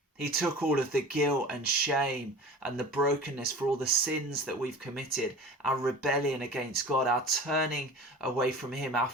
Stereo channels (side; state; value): both; normal; correlation 0.38